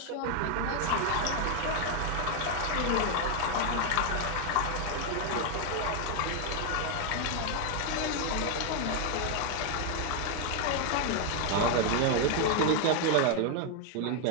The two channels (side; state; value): both; different; correlation 0.01